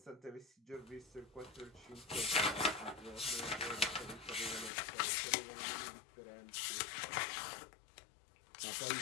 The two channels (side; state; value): right; drops out; at 4.7 s